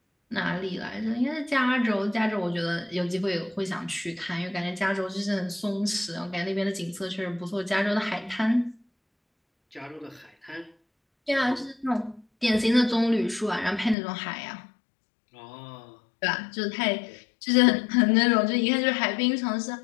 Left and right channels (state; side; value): drops out; right; at 14.0 s